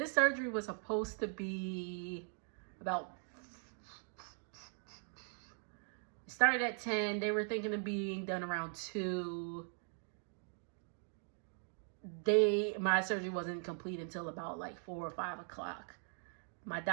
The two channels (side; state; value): left; silent; 51 dB below the other